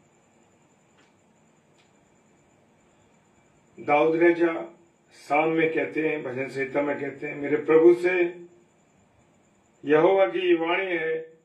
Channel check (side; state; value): both; identical; correlation 1.00